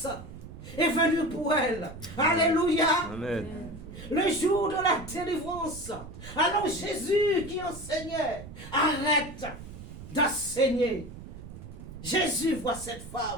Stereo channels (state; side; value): noise; right; rumble, 13 dB below the sound